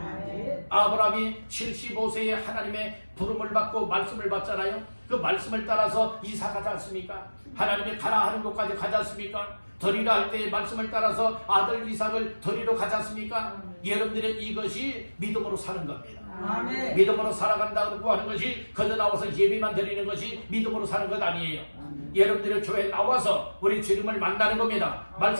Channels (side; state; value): both; inverted; correlation -1.00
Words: 아브라함이 75세에 하나님의 부름을 받고 말씀을 받잖아요. 그 말씀을 따라서 이사 가지 않습니까? 하나님이 가라 하는 곳까지 가지 않습니까? 드리라 할 때의 말씀을 따라서 아들 이삭을 드리러 가지 않습니까? 여러분들의 이것이 믿음으로 사는 겁니다. 믿음으로 살아간다고 하는 것이, 거저 나와서 예배만 드리는 것이 믿음으로 사는 것 아니에요. 여러분들이 교회에 나와서 우리 주님을 만나는 겁니다.